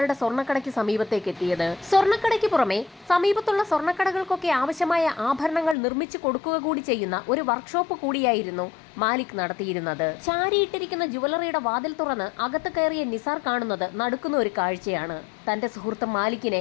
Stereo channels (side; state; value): right; drops out; at 5.8 s